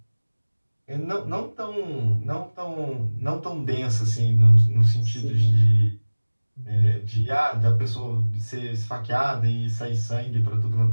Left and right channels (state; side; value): inverted; both; correlation -1.00